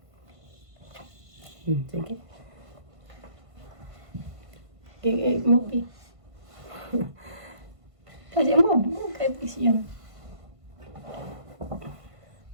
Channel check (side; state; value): left; late; 1.5 ms